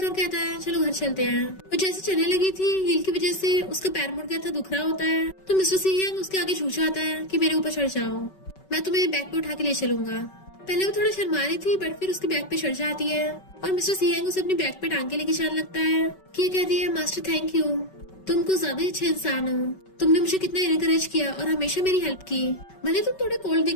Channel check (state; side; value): late; right; 5.3 ms